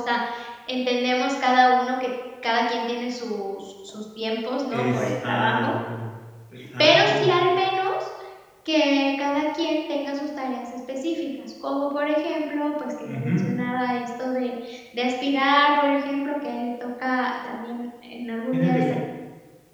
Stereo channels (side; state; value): both; identical; correlation 1.00